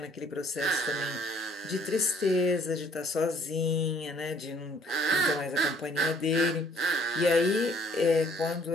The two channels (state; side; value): normal; both; correlation 0.60